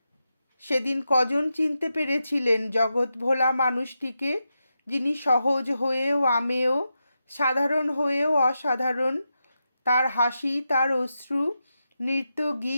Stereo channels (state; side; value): inverted; both; correlation -0.88